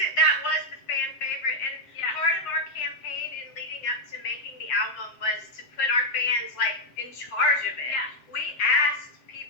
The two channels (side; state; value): right; late; 7.5 ms